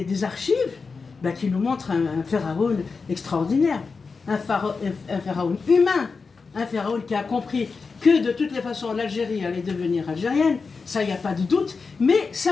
archives qui nous montrent un pharaon extraordinaire, un pharaon humain, un pharaon qui a compris que de toutes les façons l'Algérie allait devenir algérienne, ça il n'y a pas de doute, mais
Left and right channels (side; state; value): right; quieter; 4.7 dB